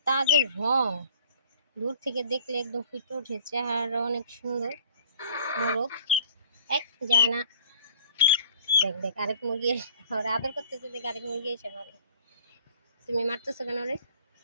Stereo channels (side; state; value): both; inverted; correlation -0.51